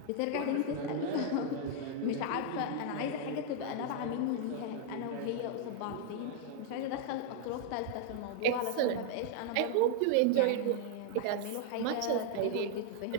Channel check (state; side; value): different; both; correlation 0.00